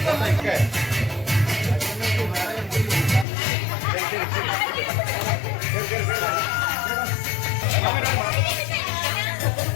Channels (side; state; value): right; drops out; at 3.2 s